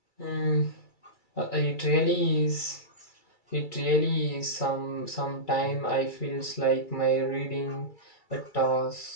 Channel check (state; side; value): late; right; 2.3 ms